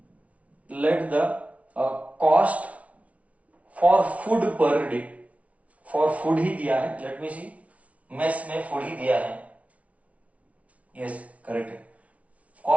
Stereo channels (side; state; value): left; late; 0.066 ms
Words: the cost for food per day. For food ही दिया है. Let me see. मेस में food ही दिया है. Yes, correct है.